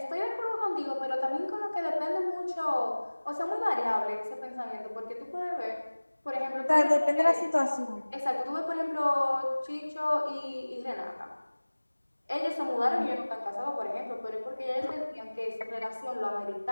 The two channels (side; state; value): both; inverted; correlation -1.00